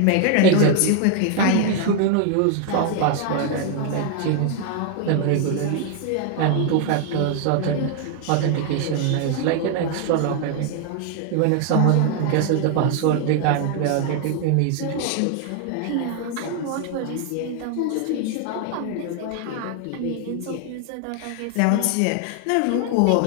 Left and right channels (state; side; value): different; both; correlation 0.00